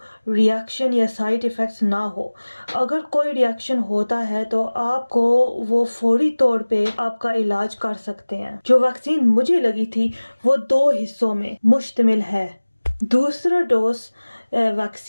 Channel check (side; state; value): both; inverted; correlation -1.00